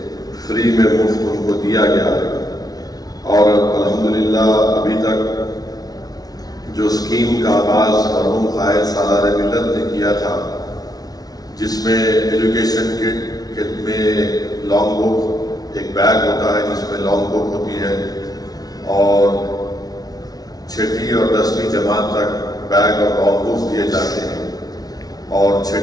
فری میں مفت ان کو دیا گیا ہے۔ اور الحمدللہ ابھی تک جو اسکیم کا آغاز مرحوم قائد سالار ملت نے کیا تھا، جس میں ایجوکیشن کٹ میں لانگ بک ایک بیگ ہوتا ہے جس میں لانگ بک ہوتی ہے، اور 6ٹھی اور 10ویں جماعت تک بیگ اور لانگ بکس دیے جاتے ہیں، اور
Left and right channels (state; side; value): late; right; 0.19 ms